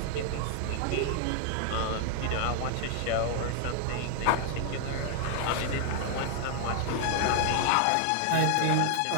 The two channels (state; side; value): different; both; correlation 0.00